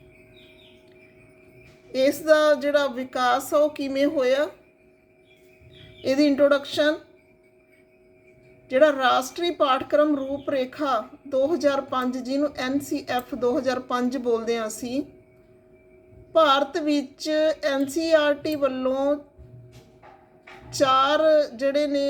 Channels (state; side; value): identical; both; correlation 1.00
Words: ਇਸ ਦਾ ਜਿਹੜਾ ਵਿਕਾਸ ਆ ਉਹ ਕਿਵੇਂ ਹੋਇਆ, ਇਹਦੀ ਇੰਟਰੋਡਕਸ਼ਨ, ਜਿਹੜਾ ਰਾਸ਼ਟਰੀ ਪਾਠਕ੍ਰਮ ਰੂਪਰੇਖਾ 2005 ਜਿਹਨੂੰ NCF 2005 ਬੋਲਦੇ ਹਾਂ ਅਸੀਂ, ਭਾਰਤ ਵਿੱਚ NCERT ਵੱਲੋਂ 4 ਜਿਹੜੇ ਨੇ